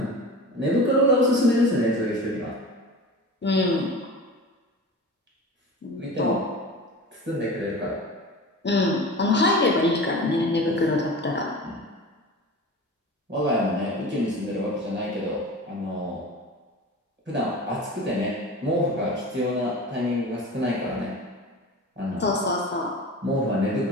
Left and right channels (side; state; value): both; normal; correlation 0.34